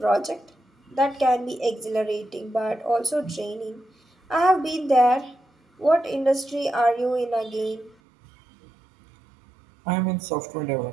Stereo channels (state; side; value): drops out; left; at 8.0 s